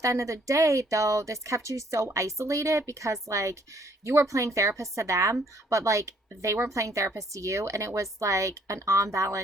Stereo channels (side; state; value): both; normal; correlation 0.64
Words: end of the day, though, this kept you so isolated because like you were playing therapist to them, but like they weren't playing therapist to you, and it was like an